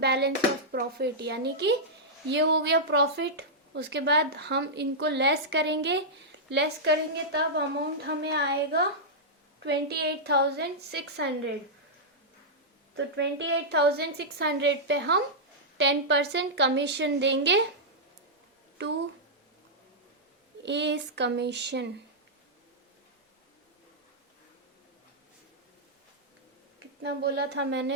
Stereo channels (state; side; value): normal; both; correlation -0.09